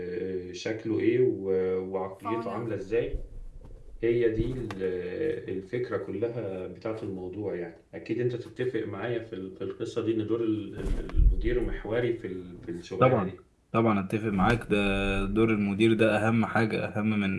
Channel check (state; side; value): identical; both; correlation 1.00